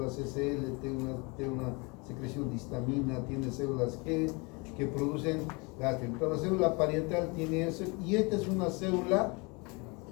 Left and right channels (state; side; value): quieter; right; 28.9 dB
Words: SL, tiene una secreción de histamina, tiene células G que producen gastrina. Entonces la célula parietal tiene eso, y esta es una célula